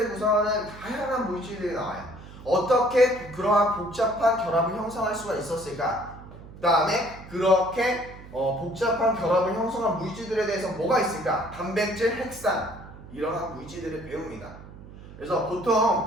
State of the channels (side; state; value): right; noise; hum, 17 dB below the sound